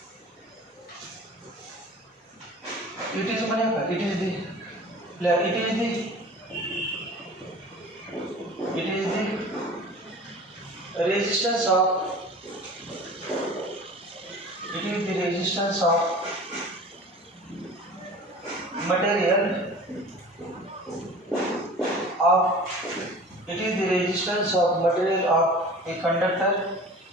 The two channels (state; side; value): normal; both; correlation 0.41